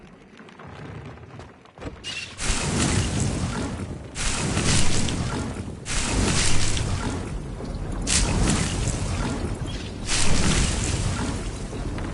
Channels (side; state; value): both; identical; correlation 1.00